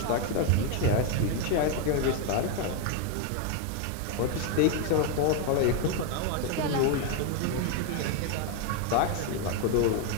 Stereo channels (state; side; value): different; both; correlation 0.01